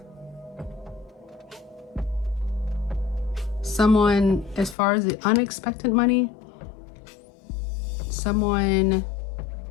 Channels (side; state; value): right; drops out; at 4.8 s